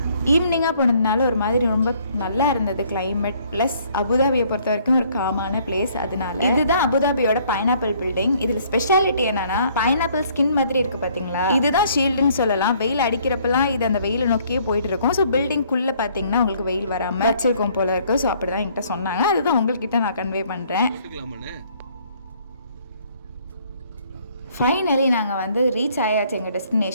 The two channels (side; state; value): both; inverted; correlation -0.62